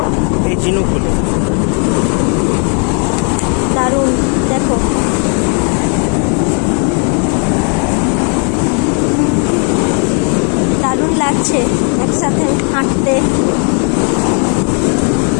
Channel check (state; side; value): quieter; right; 38.7 dB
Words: এই ঝিনুকগুলো। দারুণ দেখো। দারুণ লাগছে একসাথে হাঁটতে।